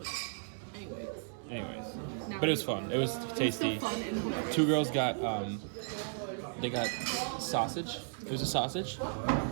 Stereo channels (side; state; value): left; silent; digital silence